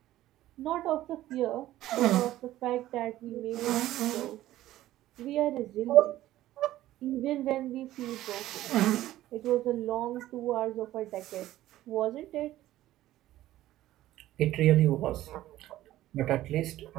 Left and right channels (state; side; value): quieter; left; 14.6 dB